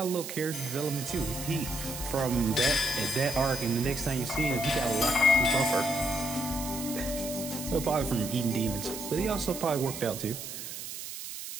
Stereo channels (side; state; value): right; noise; hiss, 8 dB below the sound